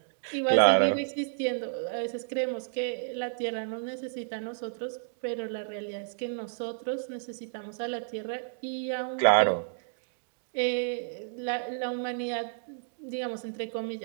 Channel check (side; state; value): left; silent; digital silence